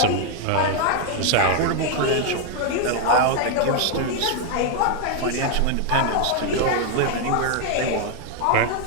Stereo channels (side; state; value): both; different; correlation 0.00